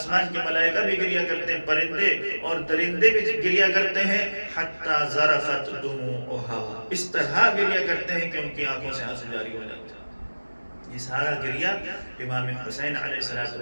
کے ملائکہ بھی گریہ کرتے ہیں، پرندے اور درندے بھی گریہ کرتے ہیں، حتی ذرفت دموعها، اس طرح گریہ کرتے ہیں کہ ان کی آنکھوں سے آنسو جاری ہو جاتے ہیں۔ یہ سارا گریہ امام حسین علیہ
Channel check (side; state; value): both; inverted; correlation -1.00